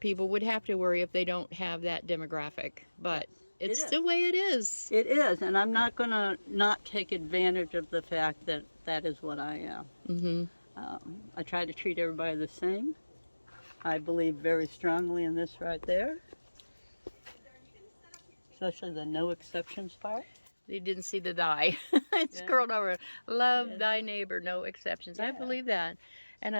would have to worry if they don't have that demographic, but it's the way it is. It is, and I'm not going to not take advantage of the fact that that is what I am. I try to treat everybody the same. I believe very strongly in this right there, especially the no exceptions part. You didn't see the thy. It's curled over. Love thy neighbor, no exceptions. I believe that.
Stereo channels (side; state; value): both; inverted; correlation -1.00